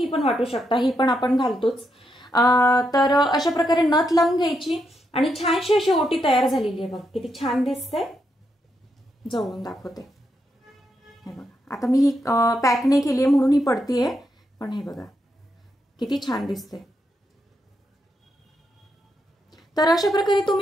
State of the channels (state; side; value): normal; both; correlation 0.81